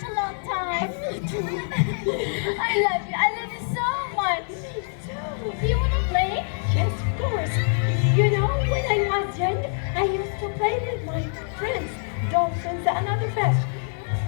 a long time. I love you. I love you so much. Do you want to play? Yes, of course. You know, when I was young, I used to play with my friends, dolphins and other fish.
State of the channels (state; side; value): silent; right; 62 dB below the other